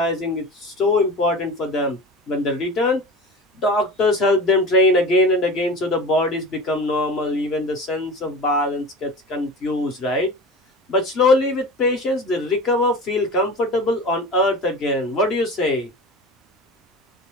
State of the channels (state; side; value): normal; both; correlation 0.33